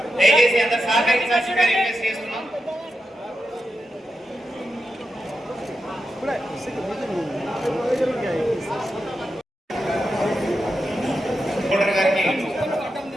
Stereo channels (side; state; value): both; normal; correlation 0.88